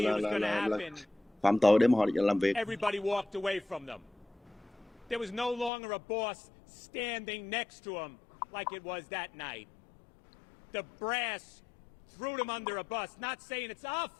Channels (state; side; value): drops out; right; at 5.7 s